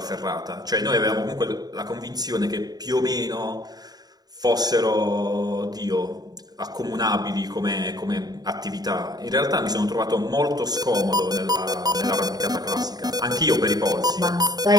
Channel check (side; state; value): left; late; 0.19 ms